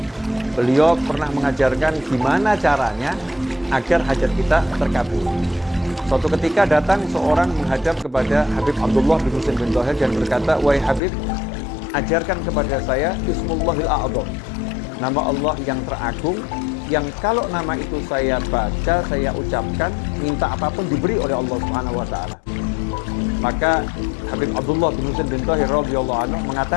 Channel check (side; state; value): right; drops out; at 11.0 s